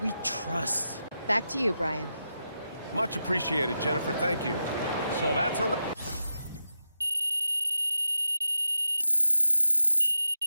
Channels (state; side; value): inverted; both; correlation -0.88